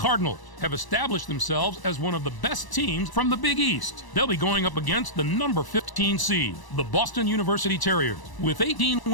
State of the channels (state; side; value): late; right; 1.0 ms